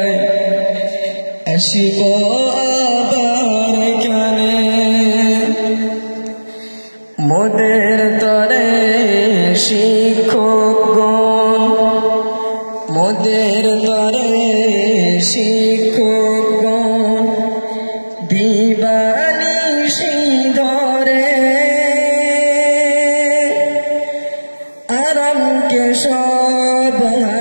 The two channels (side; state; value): both; inverted; correlation -1.00